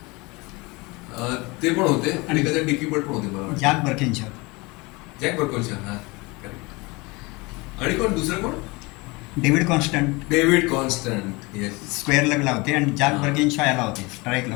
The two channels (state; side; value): quieter; right; 25.1 dB